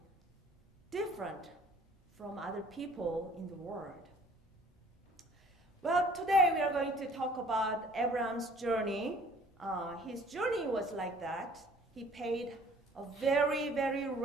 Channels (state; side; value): normal; both; correlation 0.54